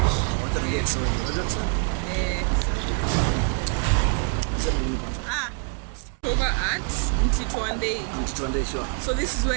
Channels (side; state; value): left; quieter; 39.6 dB